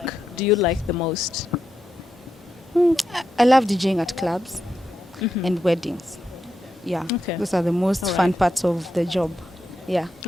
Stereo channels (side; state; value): both; normal; correlation 0.85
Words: do you like the most? I love DJing at clubs and weddings. Yeah. Okay. Those are the most All fun right. parts of the job. Yeah.